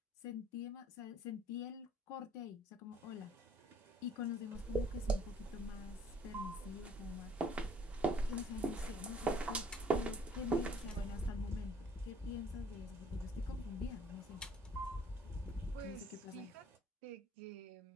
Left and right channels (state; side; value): normal; both; correlation 0.59